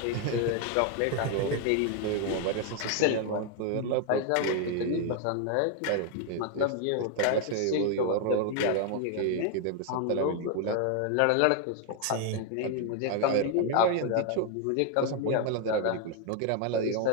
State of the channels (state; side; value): different; both; correlation 0.01